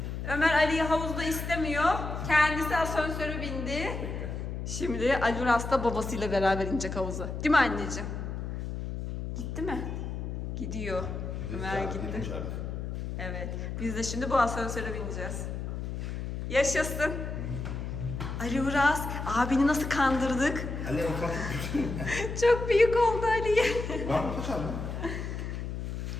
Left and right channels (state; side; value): noise; left; hum, 5 dB below the sound